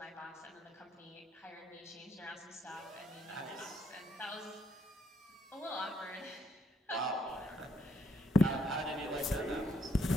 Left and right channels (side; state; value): both; normal; correlation 0.71